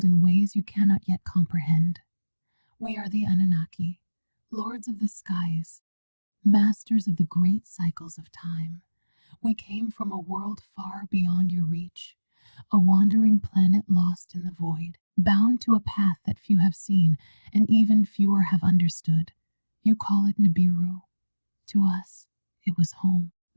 in ways you cannot yet comprehend. We are the Anunnaki, lords of the skies, masters of the great cycles of time. We came from a world far beyond your reach, a wandering planet lost in the void, bound to a path that few have seen and even fewer have understood. You call it Nibiru. To us, it was home.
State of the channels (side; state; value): both; inverted; correlation -1.00